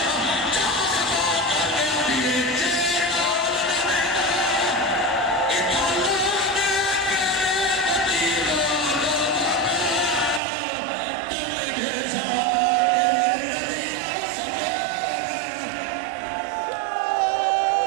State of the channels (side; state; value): left; drops out; at 10.4 s